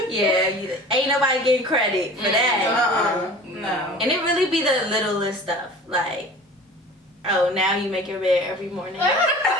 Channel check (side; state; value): both; normal; correlation 0.41